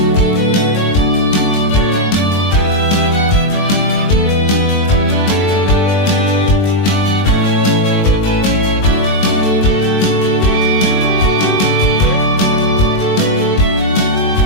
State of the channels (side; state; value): right; late; 21 ms